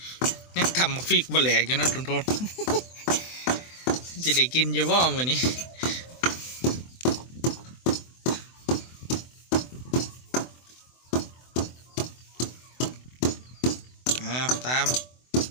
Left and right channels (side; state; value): right; late; 24 ms